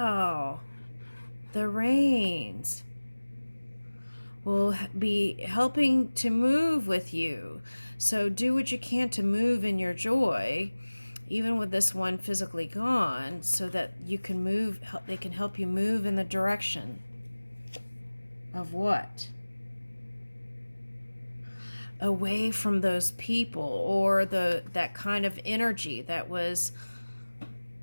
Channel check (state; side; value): inverted; both; correlation -1.00